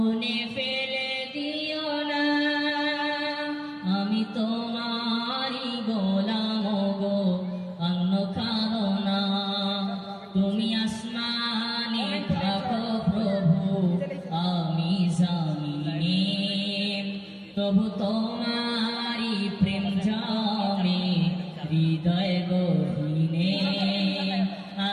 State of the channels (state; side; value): identical; both; correlation 1.00